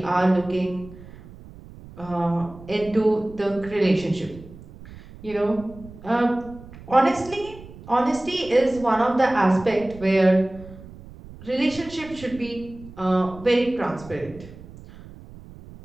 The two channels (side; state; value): right; noise; rumble, 18 dB below the sound